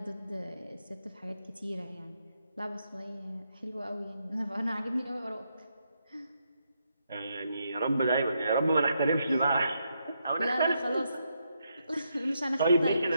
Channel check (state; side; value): inverted; both; correlation -0.80